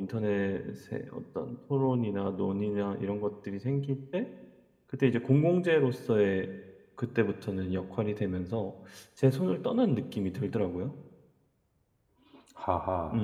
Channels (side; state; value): both; identical; correlation 1.00